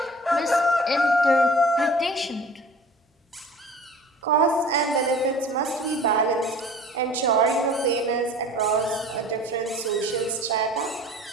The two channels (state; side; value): normal; both; correlation 0.45